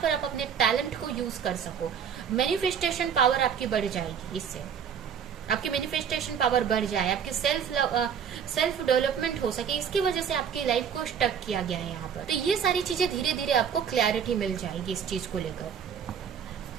आप अपने टैलेंट को यूज कर सको। मैनिफेस्टेशन पावर आपकी बढ़ जाएगी, इससे आपकी मैनिफेस्टेशन पावर बढ़ जाए, आपकी सेल्फ डेवलपमेंट हो सके, इसकी वजह से आपकी लाइफ को स्टक किया गया है यहाँ पर। तो ये सारी चीजें धीरे धीरे आपको क्लैरिटी मिल जाएगी इस चीज को लेकर,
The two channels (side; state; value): left; quieter; 7.7 dB